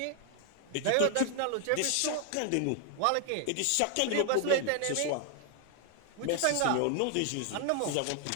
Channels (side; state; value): both; different; correlation 0.00